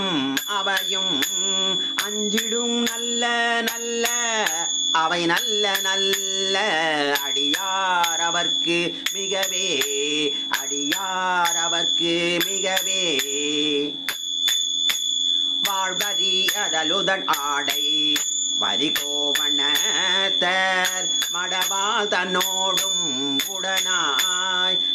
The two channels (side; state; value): both; identical; correlation 1.00